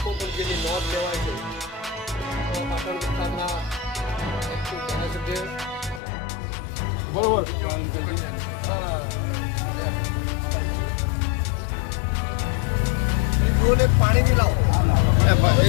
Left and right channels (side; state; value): right; drops out; at 6.0 s